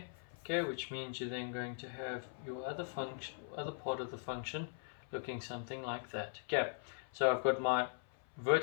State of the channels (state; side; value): silent; right; 51 dB below the other